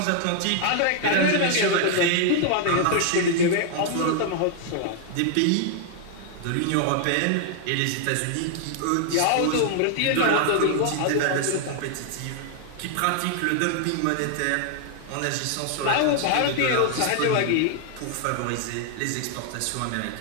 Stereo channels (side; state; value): both; different; correlation 0.00